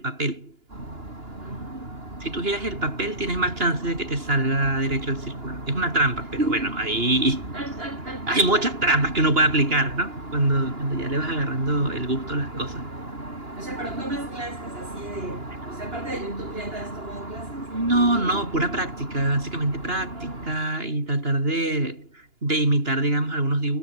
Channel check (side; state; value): left; late; 2.9 ms